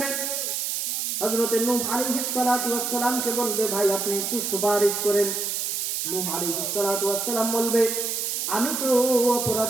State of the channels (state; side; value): noise; right; hiss, 1 dB below the sound